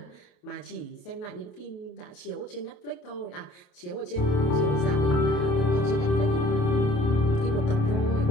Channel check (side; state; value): right; late; 28 ms